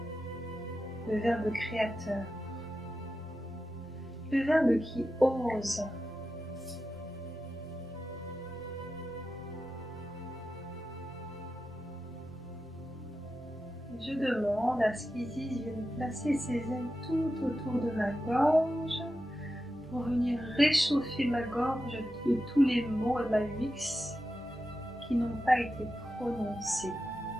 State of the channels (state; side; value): normal; both; correlation 0.91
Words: Le verbe créateur. Le verbe qui ose. Je demande à ce qu'Isis vienne placer ses ailes tout autour de ma gorge pour venir réchauffer ma gorge de tous les mots et ma vix qui n'ont pas été prononcés